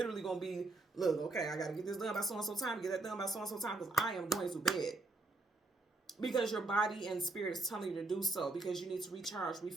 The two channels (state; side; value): quieter; left; 3.1 dB